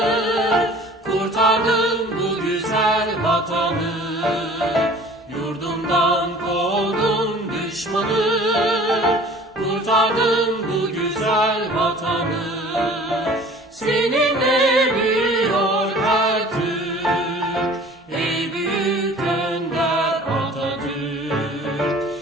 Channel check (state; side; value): normal; both; correlation 0.47